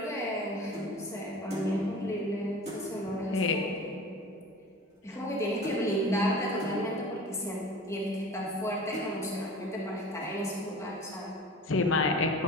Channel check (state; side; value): normal; both; correlation 0.39